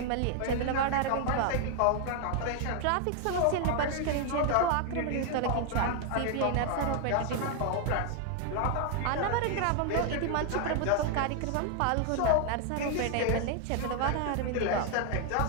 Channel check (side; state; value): both; different; correlation 0.00